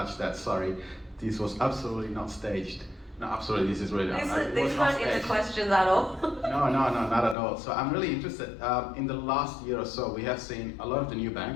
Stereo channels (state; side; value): drops out; right; at 7.4 s